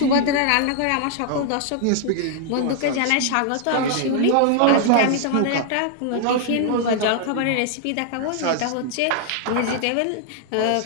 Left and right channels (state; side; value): different; both; correlation 0.00